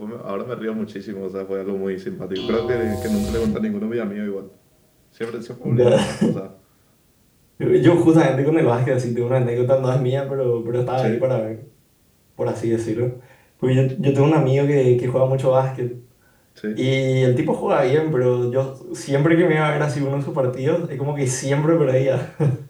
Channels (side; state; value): both; identical; correlation 1.00